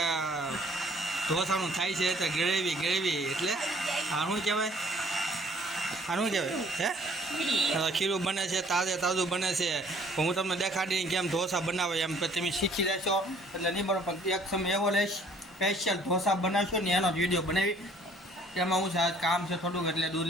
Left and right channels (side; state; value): both; normal; correlation 0.58